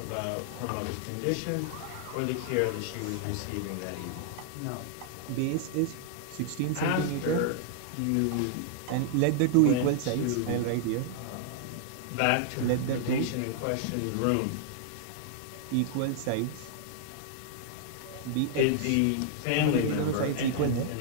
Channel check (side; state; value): both; different; correlation -0.01